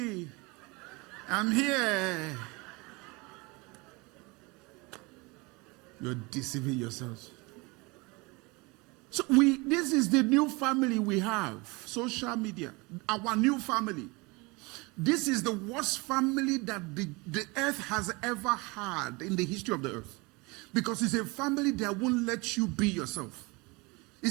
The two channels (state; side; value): quieter; left; 26.1 dB